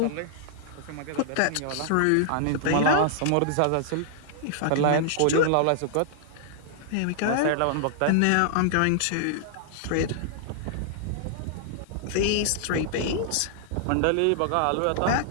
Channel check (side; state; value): both; different; correlation -0.01